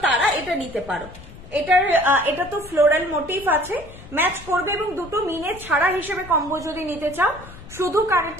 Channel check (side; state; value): left; noise; rumble, 17 dB below the sound